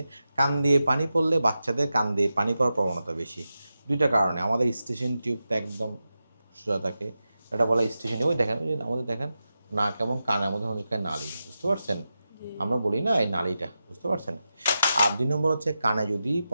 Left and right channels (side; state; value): both; inverted; correlation -0.91